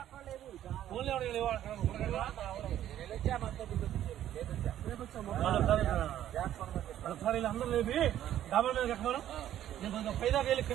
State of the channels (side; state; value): left; quieter; 11.8 dB